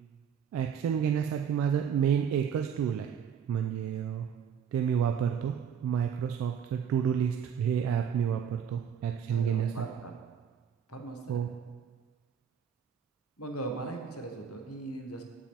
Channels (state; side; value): quieter; left; 7.7 dB